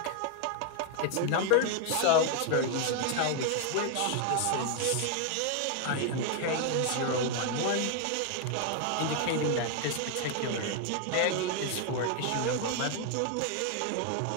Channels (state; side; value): different; both; correlation 0.00